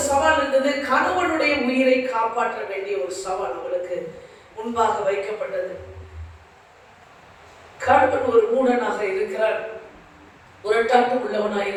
சவால் இருந்தது. கணவனுடைய உயிரை காப்பாற்ற வேண்டிய ஒரு சவால் அவளுக்கு முன்பாக வைக்கப்பட்டது. கணவன் ஒரு மூடனாக இருக்கிறார், முரட்டாட்டம் உள்ளவனாக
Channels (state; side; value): identical; both; correlation 1.00